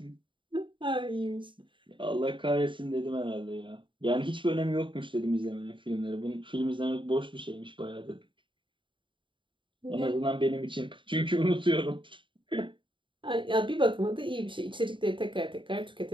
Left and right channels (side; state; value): left; late; 0.24 ms